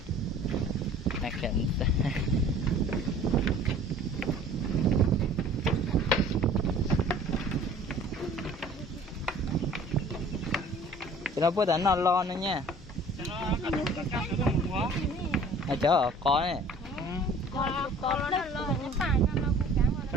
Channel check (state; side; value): normal; both; correlation 0.49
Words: là cảnh. Nó bữa đánh nó lo nữa nha. Cho nó cắt nó một quá. À chớ ở có này. Có nó lo nó phải nó cũng cám vào.